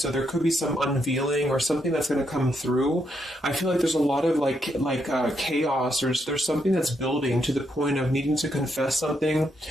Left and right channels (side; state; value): both; normal; correlation 0.78